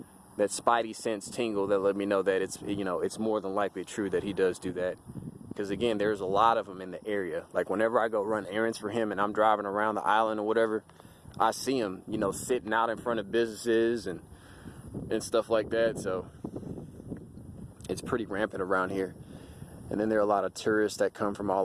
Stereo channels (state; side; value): identical; both; correlation 1.00